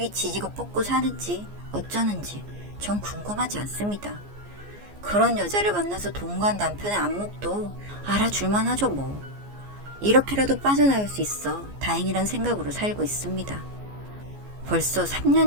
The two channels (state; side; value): late; left; 14 ms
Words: 지지고 뽑고 사는지 어쩌는지 전 궁금하지 않습니다. 그런 여자를 만나서 동거한 남편의 안목도 알아줄만 하죠 뭐. 이렇게라도 빠져나올 수 있어 다행이란 생각으로 살고 있습니다. 벌써